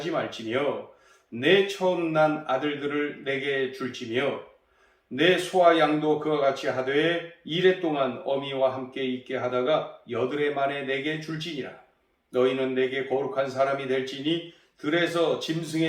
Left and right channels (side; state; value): both; identical; correlation 1.00